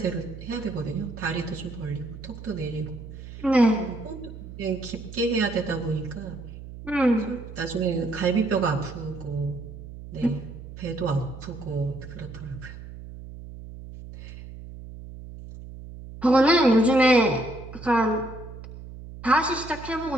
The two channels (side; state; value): right; noise; hum, 13 dB below the sound